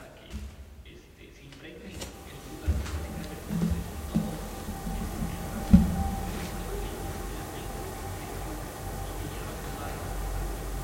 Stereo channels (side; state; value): both; identical; correlation 1.00